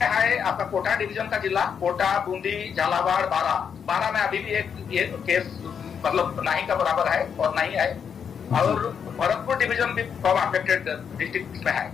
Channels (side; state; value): right; quieter; 7.2 dB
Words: है आपका कोटा डिवीजन का जिला, कोटा, बूंदी, झालावाड़, बारा में अभी भी एक केस मतलब नहीं का बराबर है और नहीं है, और भरतपुर डिवीजन भी कम अफेक्टेड डिस्ट्रिक्ट में है।